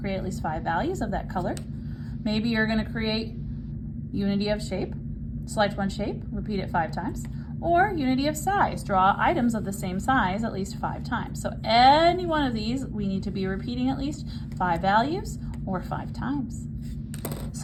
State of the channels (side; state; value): both; identical; correlation 1.00